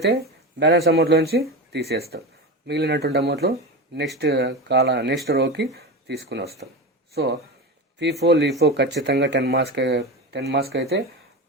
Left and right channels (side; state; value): both; normal; correlation 0.23